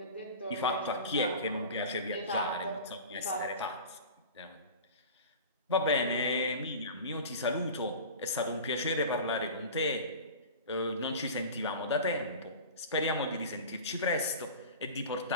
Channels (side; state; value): both; inverted; correlation -0.35